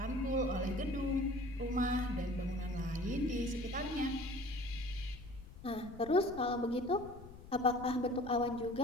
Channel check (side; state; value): left; noise; rumble, 16 dB below the sound